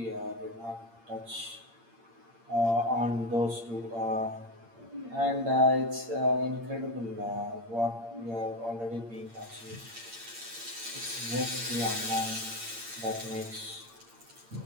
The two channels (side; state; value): left; late; 8.7 ms